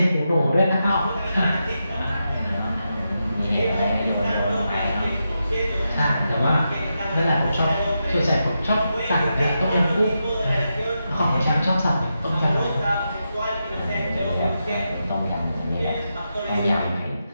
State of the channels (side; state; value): both; inverted; correlation -0.87